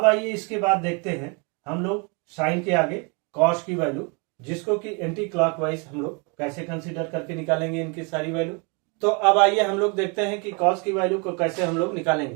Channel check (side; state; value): left; quieter; 32.2 dB